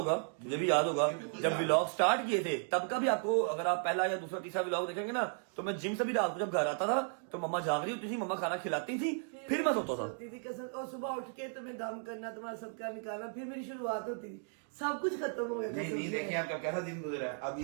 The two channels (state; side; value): silent; left; 54 dB below the other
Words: मुझे भी याद होगा, जब व्लॉग स्टार्ट किए थे तब का भी आपको, अगर आप पहला या दूसरा तीसरा व्लॉग देखेंगे ना, तो मैं जिम से भी रात को जब घर आता था तो मम्मा जाग रही होती थी, मम्मा खाना खिलाती थी, फिर मैं सोता था। कसम, और सुबह उठ के तुम्हें दम करना, तुम्हारा सदका निकालना, फिर मेरी शुरुआत होती थी। सब कुछ खत्म हो गया। नहीं देखिए आपका कैसा दिन गुजरा है अभी।